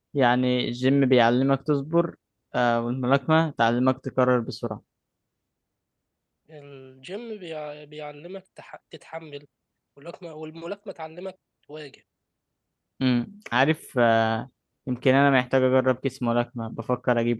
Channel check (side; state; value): both; identical; correlation 1.00